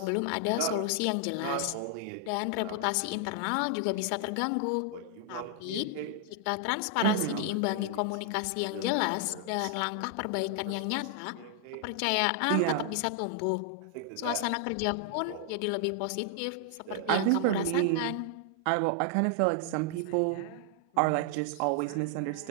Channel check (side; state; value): both; different; correlation 0.00